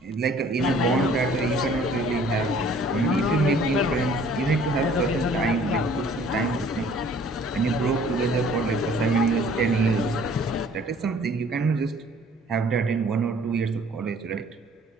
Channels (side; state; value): both; normal; correlation 0.55